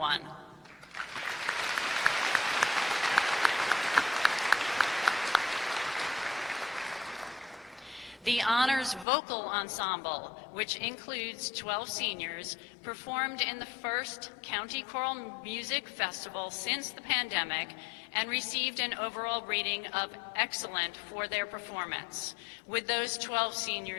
The Honors Vocal Ensemble, which includes 12 seniors, performed in the first County Choral Music Festival since the pandemic and received an overall rating of excellent for their performance. Would those 12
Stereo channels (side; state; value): right; drops out; at 9.1 s